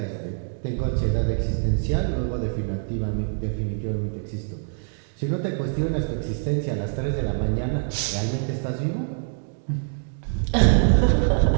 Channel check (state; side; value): silent; left; digital silence